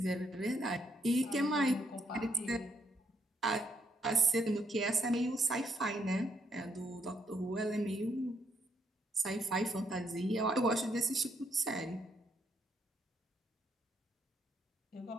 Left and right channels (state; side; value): normal; both; correlation 0.75